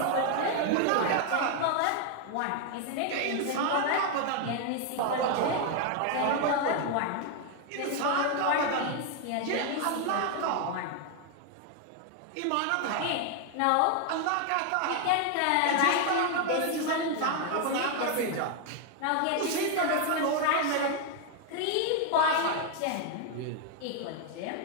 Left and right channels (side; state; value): both; different; correlation 0.00